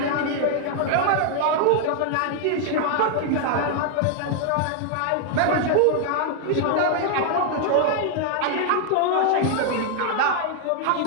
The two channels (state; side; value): different; both; correlation 0.00